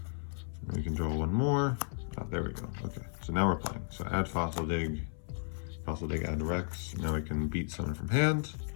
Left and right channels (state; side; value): silent; right; 55 dB below the other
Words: And we can draw one more. Oh, there we go. Okay, so now we're playing. So add fossil dig. Fossil dig, add Rex. Now we can beat summon from hand.